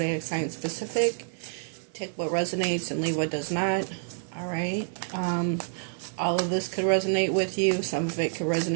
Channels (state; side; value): silent; left; 59 dB below the other